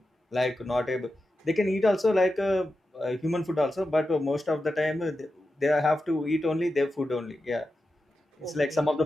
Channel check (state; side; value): normal; both; correlation 0.91